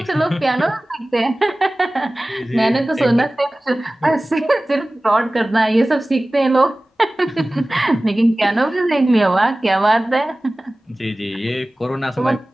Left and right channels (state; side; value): normal; both; correlation 0.97